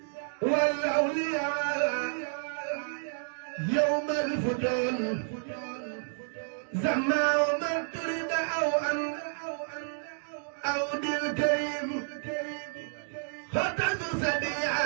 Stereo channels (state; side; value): silent; left; digital silence